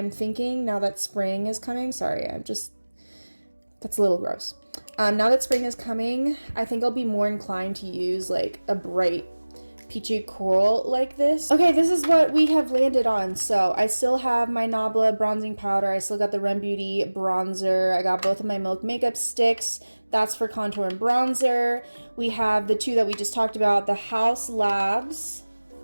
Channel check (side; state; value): both; inverted; correlation -1.00